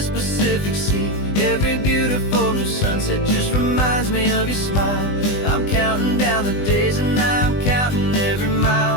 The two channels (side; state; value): right; late; 20 ms